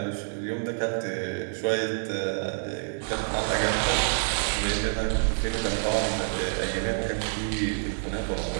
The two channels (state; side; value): silent; left; digital silence